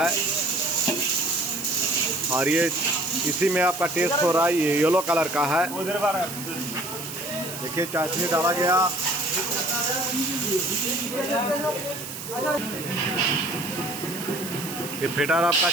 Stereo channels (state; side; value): noise; right; hiss, 10 dB below the sound